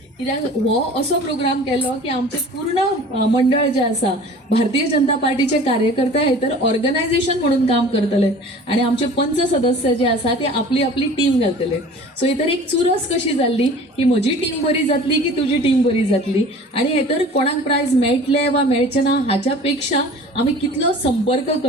कित्याक हो असो प्रोग्राम केलो की आमचे पूर्ण मंडळ जे आसा भारतीय जनता पार्टीचे कार्यकर्ते हेतर ऑर्गनायझेशन म्हणून काम करतले आणि आमचे पंच सदस्य जे आसा ते आपली आपली टीम घालतले. सो हेतर एक चुरस कशी जाल्ली की म्हजी टीम बरी जातली की तुजी टीम बरी जातली. आणि हेतर कोणाक प्रायज मेळटले वा मेळचे ना हाच्या पेक्षा आमी कितलो संपर्क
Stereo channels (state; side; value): normal; both; correlation 0.44